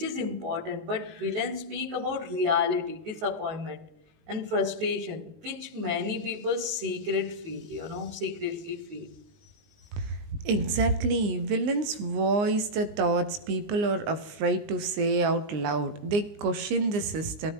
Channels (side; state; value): left; late; 19 ms